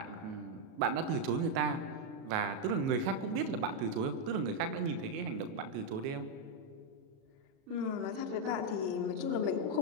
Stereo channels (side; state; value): left; late; 37 ms